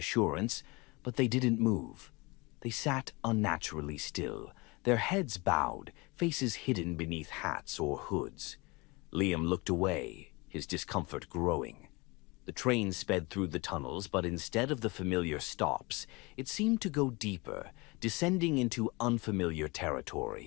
but they didn't move. They sat unnaturally still, their heads bowed, faces hidden beneath hats or hoods. Liam looked away, his discomfort growing. The train sped through the tunnels, but instead of the familiar stops, it seemed to go deeper, descending into unfamiliar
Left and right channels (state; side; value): quieter; right; 25.6 dB